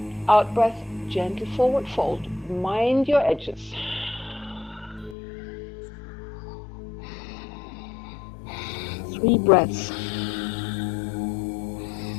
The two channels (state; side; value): drops out; right; at 5.2 s